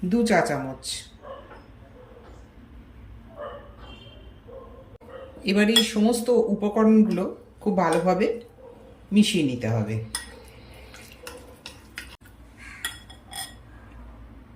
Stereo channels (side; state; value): both; identical; correlation 1.00